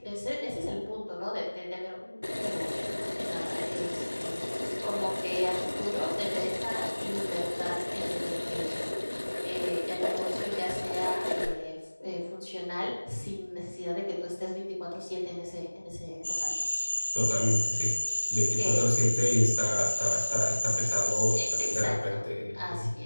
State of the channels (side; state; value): both; inverted; correlation -1.00